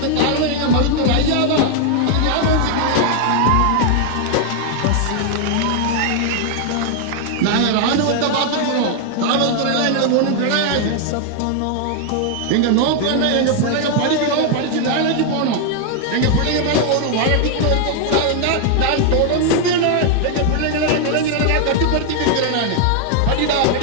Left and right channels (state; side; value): different; both; correlation 0.00